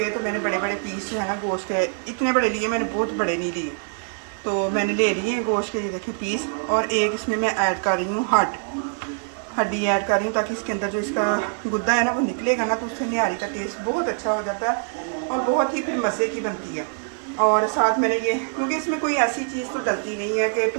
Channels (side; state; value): left; silent; 63 dB below the other